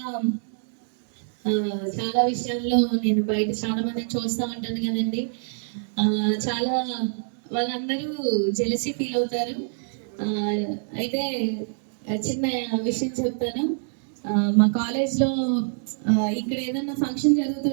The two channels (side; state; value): left; silent; digital silence